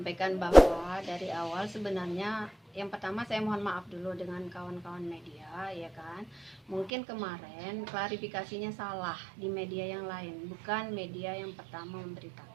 bahwa dari awal sebenarnya yang pertama saya mohon maaf dulu dengan kawan-kawan media, ya kan. Mungkin kemarin klarifikasinya salah di media yang lain, bukan media yang pertama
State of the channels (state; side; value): drops out; left; at 6.9 s